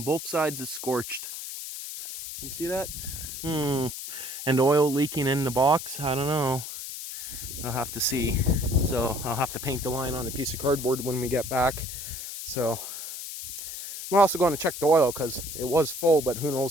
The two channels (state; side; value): noise; left; hiss, 8 dB below the sound